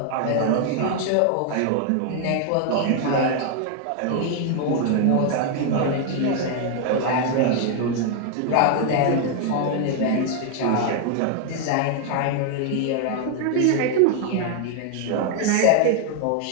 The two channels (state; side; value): different; both; correlation 0.00